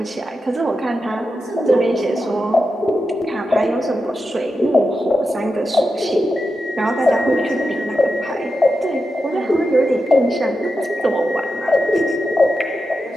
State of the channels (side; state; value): both; normal; correlation 0.89